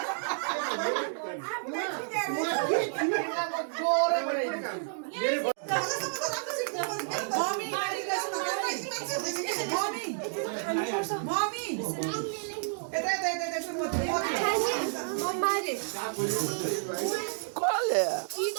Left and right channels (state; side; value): silent; left; digital silence